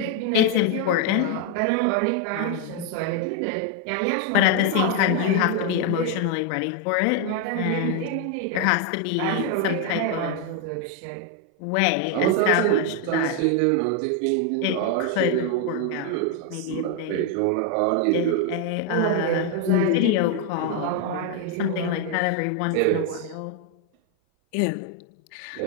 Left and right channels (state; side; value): different; both; correlation 0.01